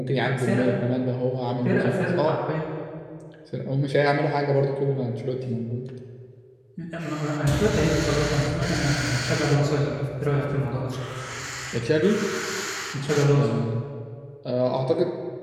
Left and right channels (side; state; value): both; identical; correlation 1.00